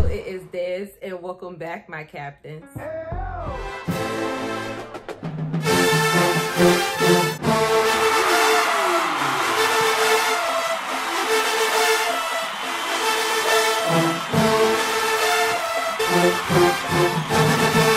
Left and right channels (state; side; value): identical; both; correlation 1.00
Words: it is Des, and welcome back, my captains.